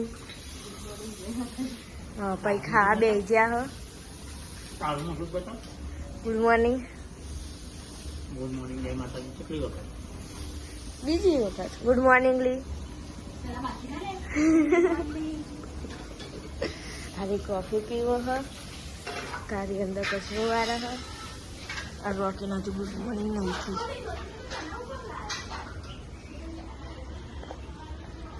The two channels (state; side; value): identical; both; correlation 1.00